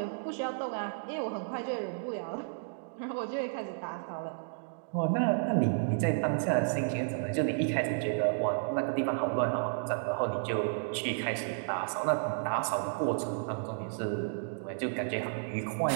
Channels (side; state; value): left; silent; digital silence